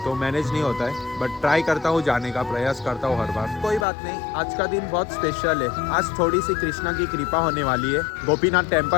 तो मैनेज नहीं होता है, बट ट्राई करता हूँ जाने का, प्रयास करता हूँ हर बार। कोई बात नहीं, आज का दिन बहुत स्पेशल है। आज थोड़ी सी कृष्णा की कृपा होने वाली है। गोपीनाथ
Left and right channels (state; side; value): drops out; right; at 3.9 s